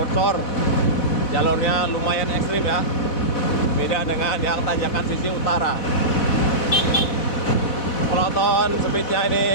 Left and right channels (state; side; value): late; right; 4.1 ms